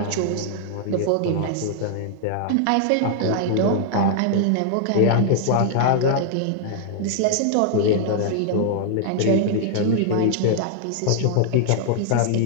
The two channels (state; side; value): different; both; correlation -0.01